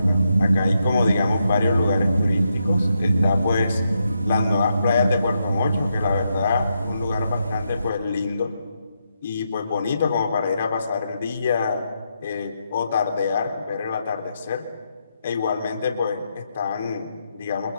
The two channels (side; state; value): both; inverted; correlation -0.82